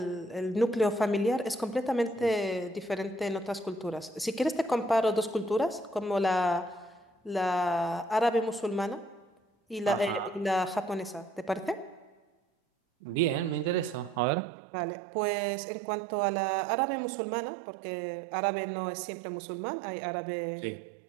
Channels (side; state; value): left; drops out; at 14.2 s